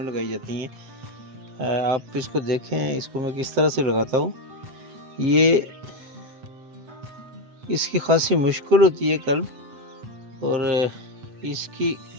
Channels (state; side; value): late; left; 8.0 ms